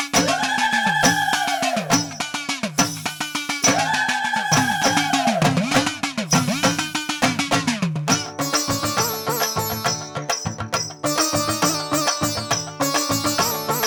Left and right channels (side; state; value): both; identical; correlation 1.00